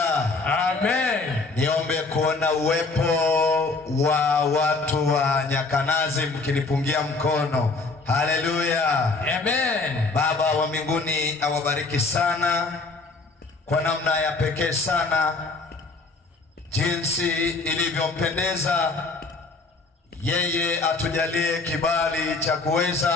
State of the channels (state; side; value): quieter; right; 3.8 dB